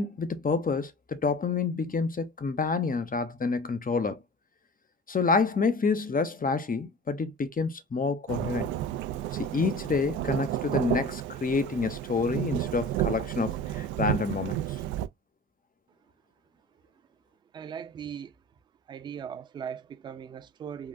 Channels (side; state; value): both; normal; correlation 0.39